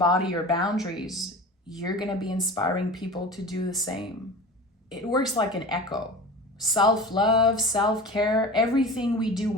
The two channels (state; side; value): normal; both; correlation 0.35